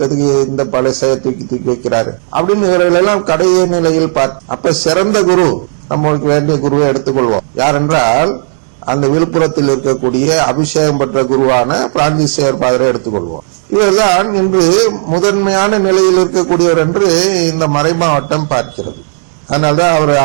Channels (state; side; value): silent; left; digital silence